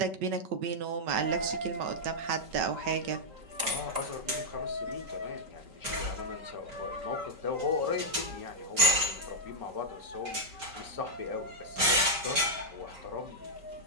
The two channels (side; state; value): left; late; 5.3 ms